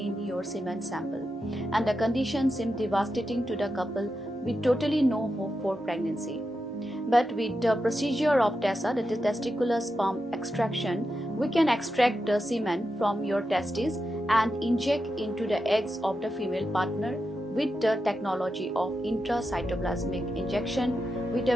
your semen sample, and the condition seems devastating to the couple with totally no hope for pregnancy. But with the procedure of TESA, that is testicular sperm extraction, we can extract the semen from your testes and inject into the eggs of the female partner with the technology of intracytoplasmic injection with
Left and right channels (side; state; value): both; normal; correlation 0.88